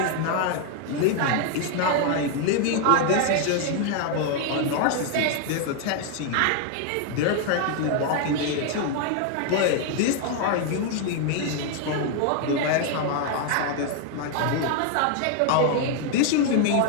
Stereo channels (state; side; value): different; both; correlation 0.00